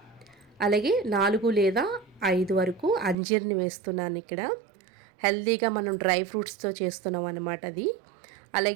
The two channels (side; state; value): left; drops out; at 3.2 s